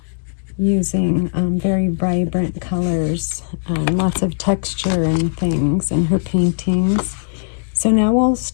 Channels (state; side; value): silent; right; digital silence